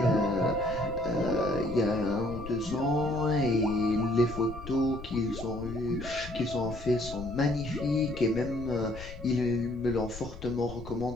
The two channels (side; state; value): left; noise; rumble, 12 dB below the sound